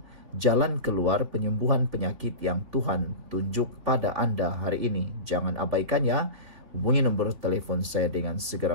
jalan keluar penyembuhan penyakit yang Tuhan tunjuk pada Anda hari ini. Jangan abaikannya. Hubungi nombor telefon saya dengan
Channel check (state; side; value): late; left; 3.5 ms